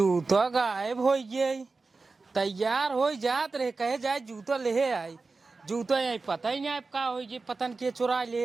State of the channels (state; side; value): quieter; left; 3.9 dB